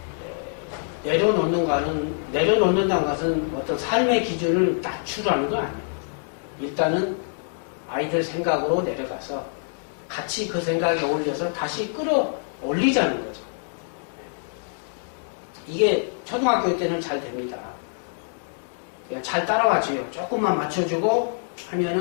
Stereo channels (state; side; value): silent; right; digital silence